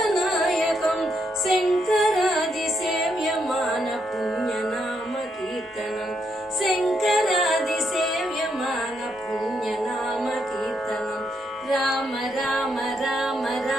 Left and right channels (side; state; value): both; normal; correlation 0.78